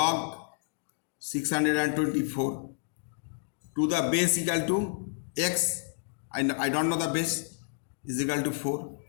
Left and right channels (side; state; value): right; silent; digital silence